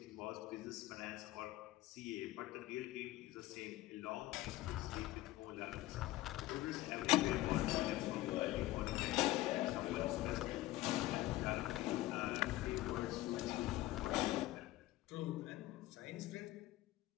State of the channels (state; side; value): quieter; right; 16.9 dB